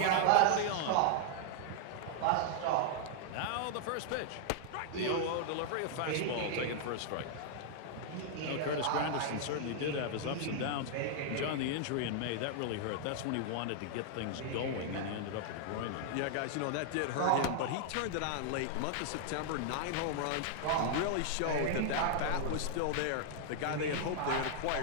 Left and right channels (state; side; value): different; both; correlation -0.01